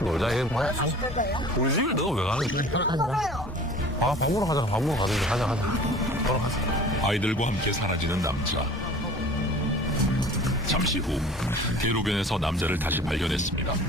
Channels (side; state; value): both; normal; correlation 0.45